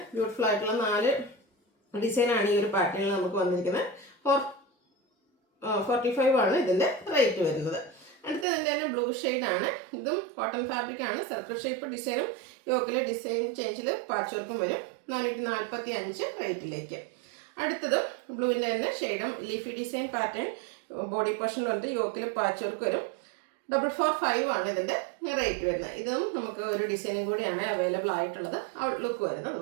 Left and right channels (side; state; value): left; drops out; at 8.5 s